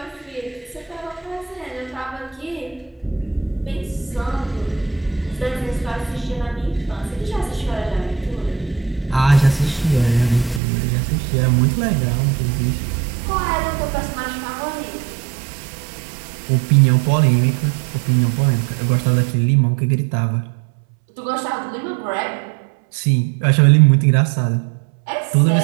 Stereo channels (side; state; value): left; drops out; at 10.6 s